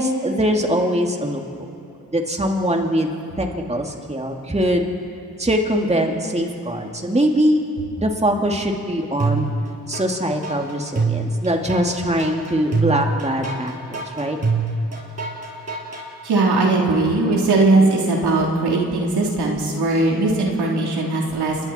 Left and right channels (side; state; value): both; normal; correlation 0.55